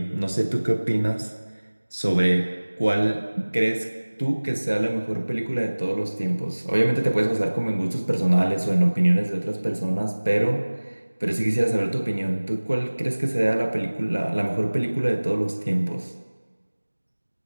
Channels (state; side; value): inverted; both; correlation -1.00